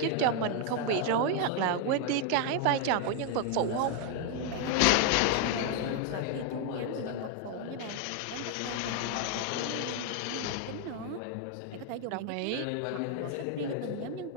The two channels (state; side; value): different; both; correlation 0.01